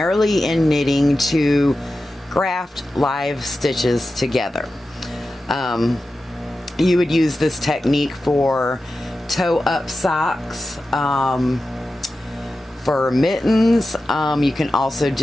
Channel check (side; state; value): both; normal; correlation 0.93